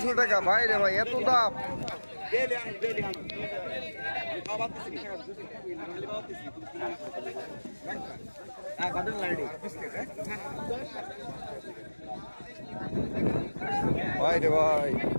টাকা। ভাই রে ভাই এত দাম। ভাই রে ভাই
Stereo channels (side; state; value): both; inverted; correlation -1.00